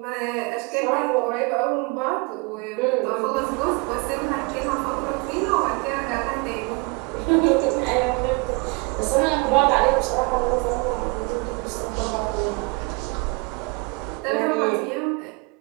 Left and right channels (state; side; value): quieter; left; 29.6 dB